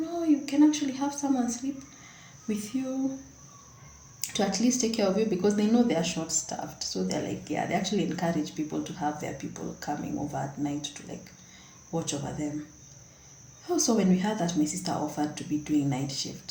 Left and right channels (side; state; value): both; identical; correlation 1.00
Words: can actually have someone sleep with you to at least take care of you, because they know they are short staffed. So they're like, yeah, they actually encourage people to have their people coming over at night to like watch over them. Also, when we heard that my sister offered to be doing night